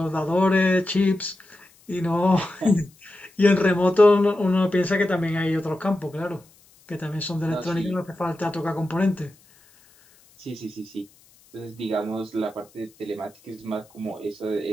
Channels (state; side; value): noise; left; hiss, 29 dB below the sound